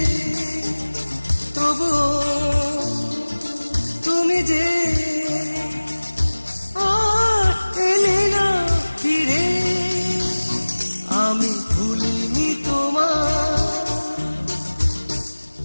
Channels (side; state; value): both; inverted; correlation -1.00